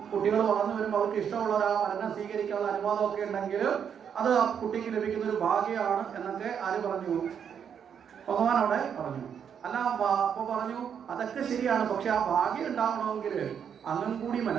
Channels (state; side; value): quieter; left; 7.8 dB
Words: കുട്ടികൾ വളർന്നു വരുമ്പോൾ അവർക്ക് ഇഷ്ടമുള്ള ആ വരനെ സ്വീകരിക്കാനുള്ള അനുവാദമൊക്കെ ഉണ്ടെങ്കിൽ അത് ആ കുട്ടിക്ക് ലഭിക്കുന്ന ഒരു ഭാഗ്യമാണ് എന്നൊക്കെ ആര് പറഞ്ഞു? ഭഗവാൻ അവിടെ പറഞ്ഞു. അല്ല, അപ്പൊ പറഞ്ഞു അതൊക്കെ ശരിയാണ്, പക്ഷെ ആ ഭാഗ്യം ഉണ്ടാവണമെങ്കിൽ അങ്ങും കൂടി